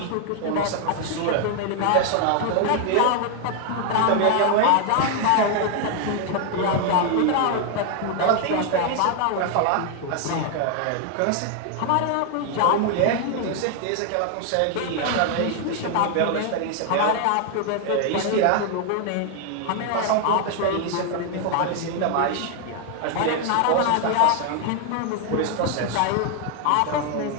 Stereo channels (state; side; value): different; both; correlation 0.00